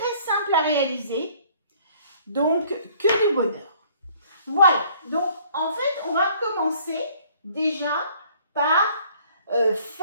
simple à réaliser, donc que du bonheur. Voilà, donc en fait on va commencer déjà par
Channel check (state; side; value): inverted; both; correlation -0.57